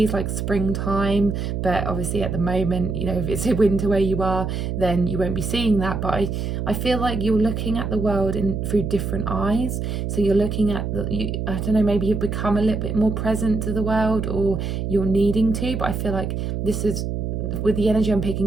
like springtime, but obviously at the moment, if it's a winter where you are, then you won't be seeing that. But I feel like you're looking at the world through different eyes. So you're looking at I don't know, maybe you've become a little bit more present to the world, or you're needing to, but I feel like this is, with the energy I'm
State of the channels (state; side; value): noise; right; hum, 2 dB below the sound